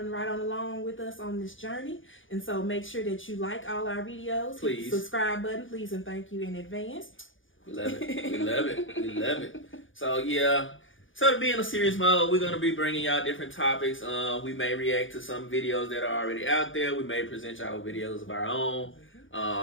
right on along with us on this journey. And so make sure that you like all our videos. Please. Hit the subscribe button, please, and thank you in advance. We love it. We love it. We love it. So, yeah. So to be in a serious mode, we're going to be bringing y'all different topics. We may react to some videos that are already out there. We may present y'all videos of our own.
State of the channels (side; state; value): right; late; 0.57 ms